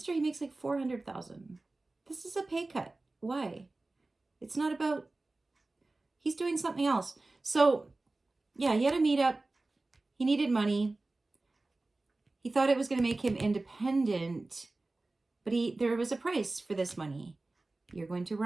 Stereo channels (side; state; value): left; quieter; 3.1 dB